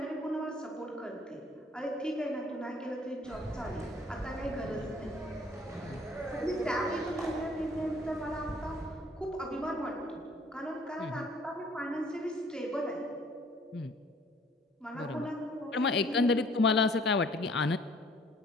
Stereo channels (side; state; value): both; normal; correlation 0.57